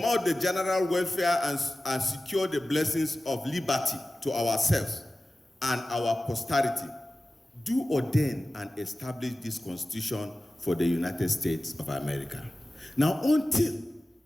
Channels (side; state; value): both; normal; correlation 0.96